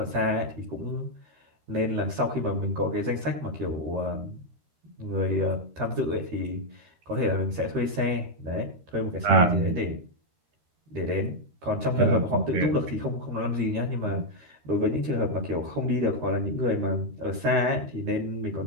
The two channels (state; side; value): late; left; 13 ms